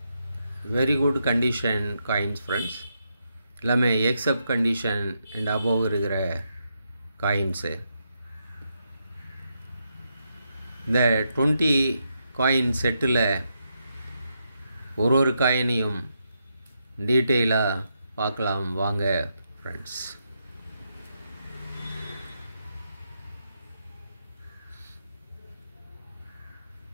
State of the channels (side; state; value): both; inverted; correlation -0.82